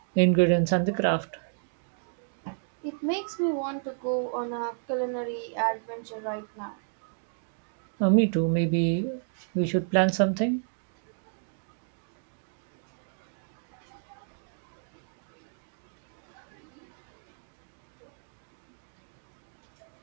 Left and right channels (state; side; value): silent; left; digital silence